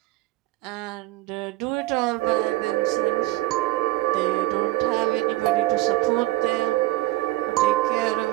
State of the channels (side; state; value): left; quieter; 18.3 dB